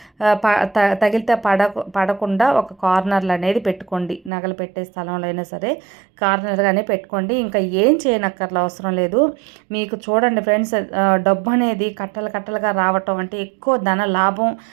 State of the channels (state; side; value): drops out; left; at 4.3 s